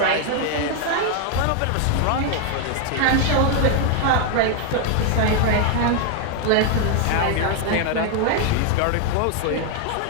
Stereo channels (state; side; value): different; both; correlation 0.00